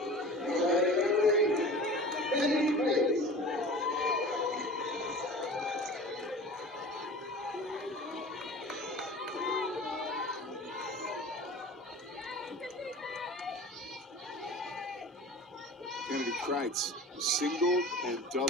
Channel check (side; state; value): both; normal; correlation 0.38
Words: Kennedy Kreitz singled and